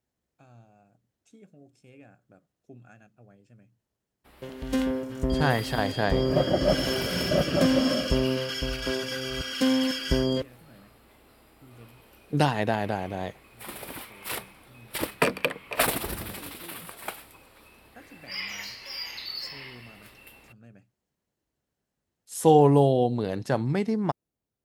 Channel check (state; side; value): identical; both; correlation 1.00